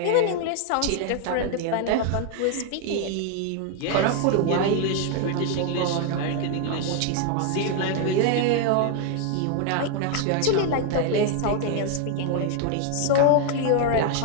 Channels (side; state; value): both; different; correlation 0.00